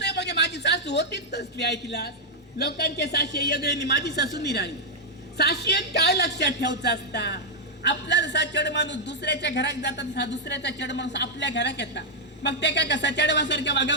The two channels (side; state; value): both; normal; correlation -0.03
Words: म्हणजे माझी सासू होतीच तसली ऐकला. लोकांचे साशे वेगळे माझी सासू निराळी. साशेत काय लक्षात ठेवायचं असता आपला जसा चढ माणूस दुसऱ्याच्या घरात जातात तसा दुसऱ्याचा चढ माणूस आपल्या घरात येतात. मग ते काय कसा चढवासारख्या वागा